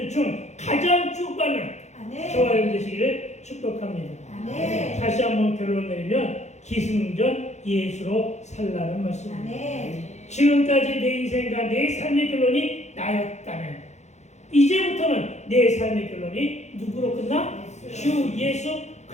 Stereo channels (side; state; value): right; late; 0.33 ms